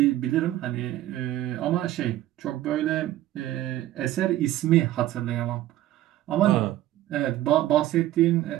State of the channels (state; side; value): quieter; left; 14.3 dB